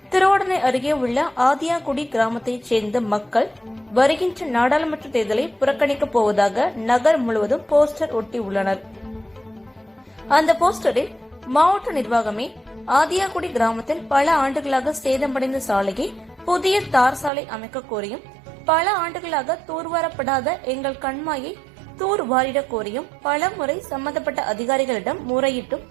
திருவோடனை அருகே உள்ள ஆதியாகுடி கிராமத்தைச் சேர்ந்த மக்கள் வருகின்ற நாடாளுமன்ற தேர்தலை புறக்கணிக்கப் போவதாக நகர் முழுவதும் போஸ்டர் ஒட்டியுள்ளனர். அந்த போஸ்டரில் மாவட்ட நிர்வாகமே ஆதியாகுடி கிராமத்தில் பல ஆண்டுகளாக சேதமடைந்த சாலையை புதிய தார் சாலை அமைக்க கோரியும், பல ஆண்டுகளாக தூர்வாரப்படாத எங்கள் கண்மாயை தூர் வாரிட கோரியும் பல முறை சம்பந்தப்பட்ட அதிகாரிகளிடம் முறையிட்டும்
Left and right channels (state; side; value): drops out; left; at 17.3 s